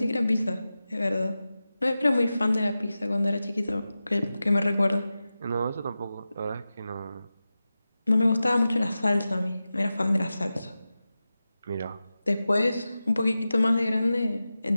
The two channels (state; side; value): inverted; both; correlation -0.94